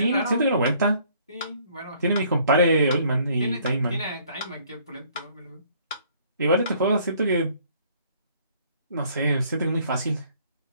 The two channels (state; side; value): inverted; both; correlation -0.61